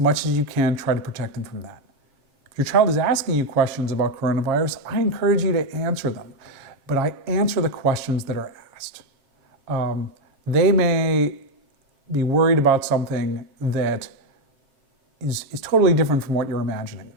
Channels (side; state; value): left; late; 7.2 ms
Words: much as you can, try to protect them from that. If your child is asking you questions about coronavirus, I encourage you to answer them, but I answer the questions that are asked. They may be worried about something that is totally different from what you're imagining.